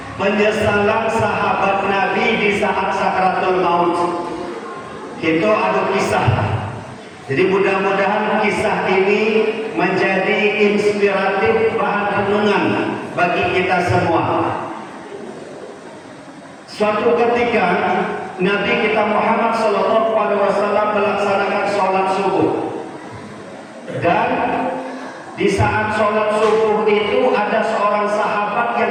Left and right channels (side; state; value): both; identical; correlation 1.00